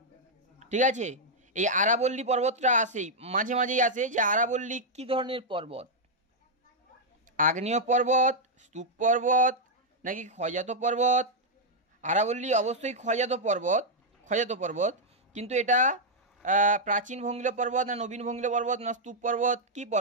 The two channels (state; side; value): normal; both; correlation -0.03